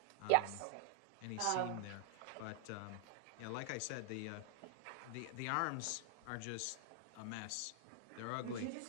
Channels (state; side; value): different; both; correlation 0.00